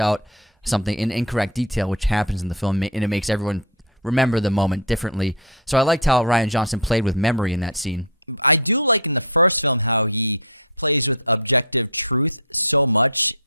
something in incorrect detail, which happens in the film, and it makes everyone remember the moment differently. So I liked how Rian Johnson played with memory in that scene. I do like in the first film how he plays with objective truth so much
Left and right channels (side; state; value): both; normal; correlation 0.07